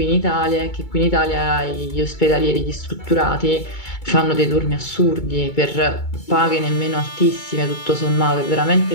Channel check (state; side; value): late; right; 2.3 ms